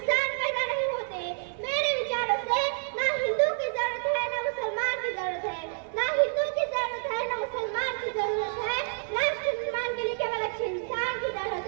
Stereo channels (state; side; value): silent; left; digital silence